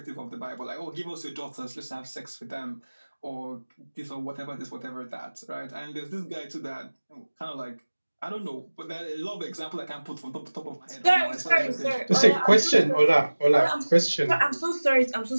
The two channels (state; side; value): inverted; both; correlation -1.00